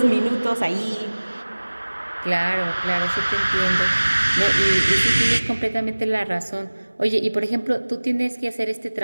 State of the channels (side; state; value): both; inverted; correlation -1.00